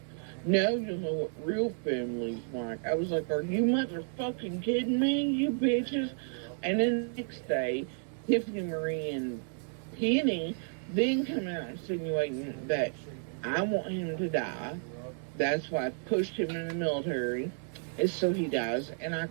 no, you know what real family's like. I was like, are you motherfucking kidding me, you bitches? And then the next day, Tiffany Marie and Penny then come out insinuating that I want him to die. That's why I pushed him in the military, is so he dies, and I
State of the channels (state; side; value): silent; left; 57 dB below the other